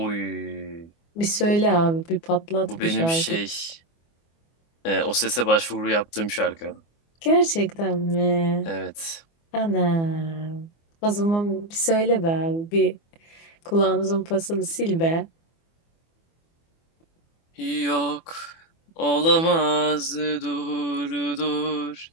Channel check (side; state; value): right; late; 24 ms